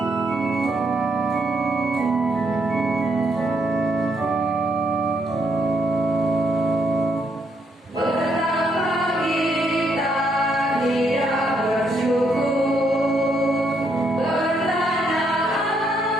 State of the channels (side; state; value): both; normal; correlation 0.75